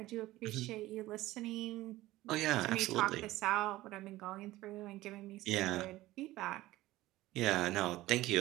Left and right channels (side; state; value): left; quieter; 17.1 dB